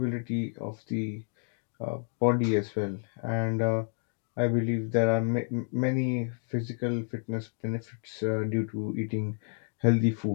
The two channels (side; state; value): right; silent; 58 dB below the other